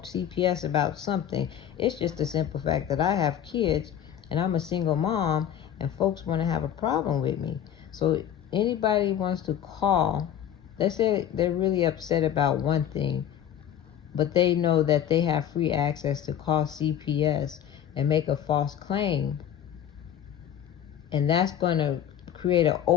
CPS about something. It's just the simple fact that I have kids and I'm a single mom, and folks want to have a problem with me. So anybody wants to call, let's say they're really upset about one thing, but they know that they have free access to call CPS and make a false claim, and that's going to create an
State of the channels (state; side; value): quieter; right; 9.9 dB